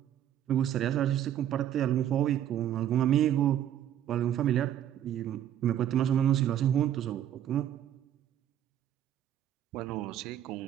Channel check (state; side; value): quieter; left; 10.9 dB